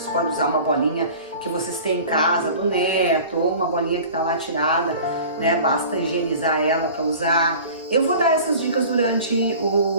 pode usar uma bolinha que vocês têm em casa, do neto, ou uma bolinha que está lá tirada, né? Basta higienizar ela para usar. Eu vou dar essas dicas durante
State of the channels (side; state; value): both; inverted; correlation -0.42